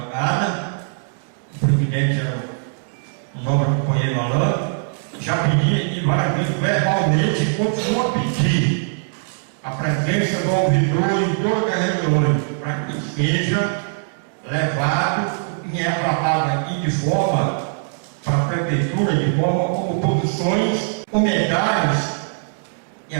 o presidente era o nobre companheiro Alain, já pedi aqui várias vezes verbalmente e continuo a pedir a presença do ouvidor em todas as reuniões, para que seja levado e é tratado aqui de forma para a prefeitura, de forma como posições, comentários, e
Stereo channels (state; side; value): silent; left; digital silence